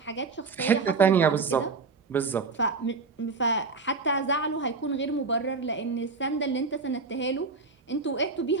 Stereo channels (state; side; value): quieter; left; 4.4 dB